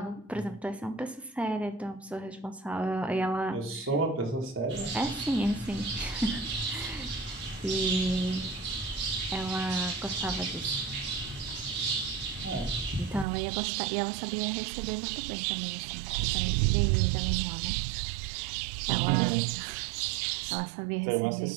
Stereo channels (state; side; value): drops out; left; at 13.2 s